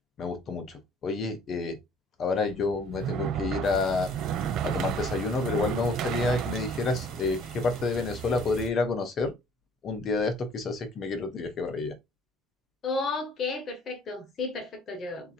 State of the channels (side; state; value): both; normal; correlation 0.55